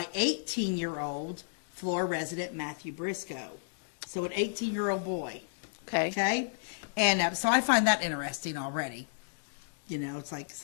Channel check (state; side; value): silent; right; digital silence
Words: 18-year-old Flora resident Matthew Briscoe. So an 18-year-old boy. Okay. Okay? And so I find that interesting already. You know, it's like